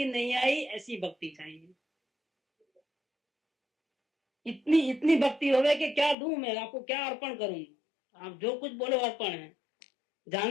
नहीं आई ऐसी भक्ति चाहिए। इतनी इतनी भक्ति होवे कि क्या दूं मैं आपको, क्या अर्पण करूं, आप जो कुछ बोलो अर्पण है,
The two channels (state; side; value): drops out; right; at 6.2 s